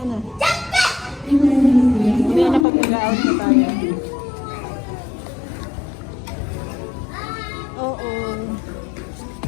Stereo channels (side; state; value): right; drops out; at 2.7 s